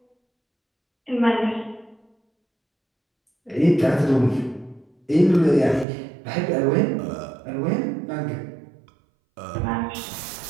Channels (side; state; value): left; drops out; at 5.9 s